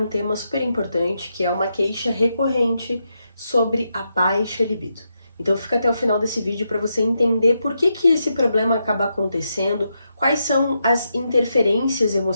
tema super importante, que é uma queixa recorrente sobre a baixa libido. Então fica até o final desse vídeo para você entender por que esse problema acaba acontecendo, quais são as interferências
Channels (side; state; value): both; inverted; correlation -0.84